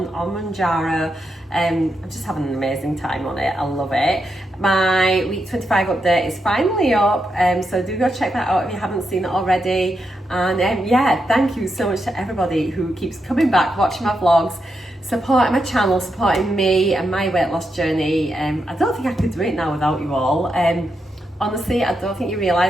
on Mounjaro. I'm just having an amazing time on it. I love it. My week 25 update is finally up, so do go check that out if you haven't seen it already. And yeah, thank you so much to everybody who keeps coming back, watching my vlogs, supporting my channel, supporting me and my weight loss journey. I don't think I could do it now without you all. Honestly, I don't think you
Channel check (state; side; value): normal; both; correlation 0.84